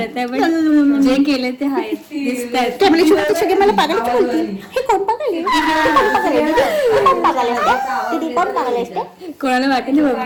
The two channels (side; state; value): both; identical; correlation 1.00